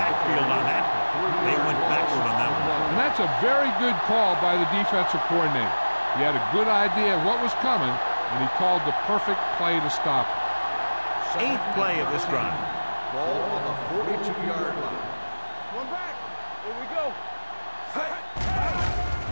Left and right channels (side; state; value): both; inverted; correlation -1.00